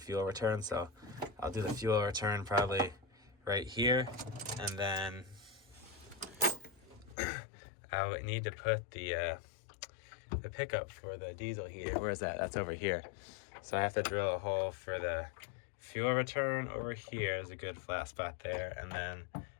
return, so I'll do the fuel return probably right here, and then I would need to put the pickup for the diesel heater. Where is that? That's over here. So I have to drill a hole for the fuel return over here. There's a good flat spot there, and then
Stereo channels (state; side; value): drops out; right; at 7.2 s